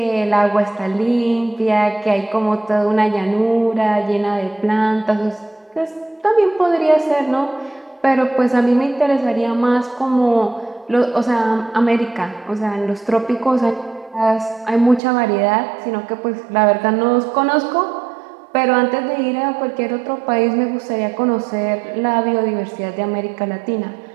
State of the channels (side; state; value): left; drops out; at 15.0 s